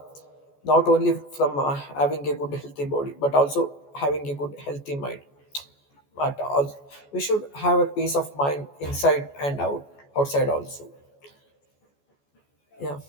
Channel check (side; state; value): right; late; 14 ms